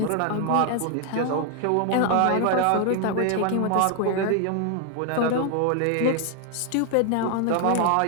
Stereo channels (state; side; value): different; both; correlation 0.00